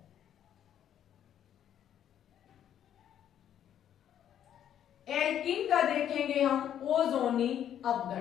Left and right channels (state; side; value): quieter; right; 10.2 dB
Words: एल्कीन का देखेंगे हम ओजोनी